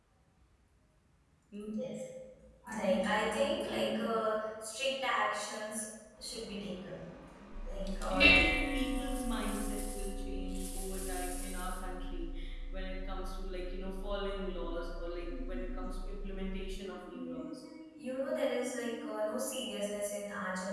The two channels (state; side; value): identical; both; correlation 1.00